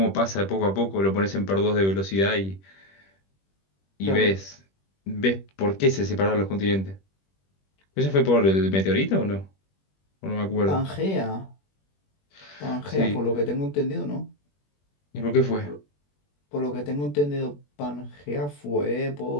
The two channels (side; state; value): right; late; 21 ms